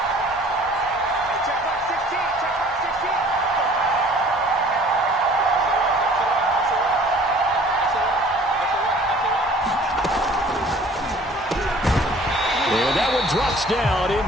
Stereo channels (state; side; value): normal; both; correlation 0.51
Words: And that one drops down,